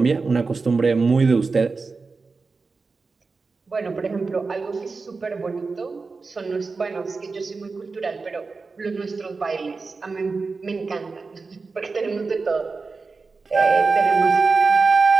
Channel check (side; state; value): left; quieter; 4.3 dB